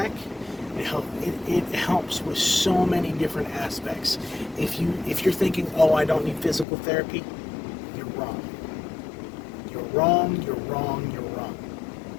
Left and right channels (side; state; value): right; drops out; at 6.7 s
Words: It helps with so many different aspects. If you're thinking, oh, I don't need physical therapy, you're wrong. You're wrong, you're wrong, you're wrong.